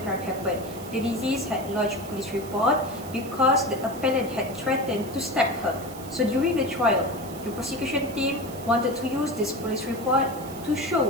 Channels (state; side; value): noise; right; hiss, 16 dB below the sound